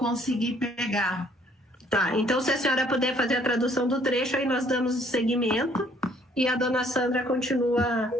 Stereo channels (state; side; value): normal; both; correlation 0.62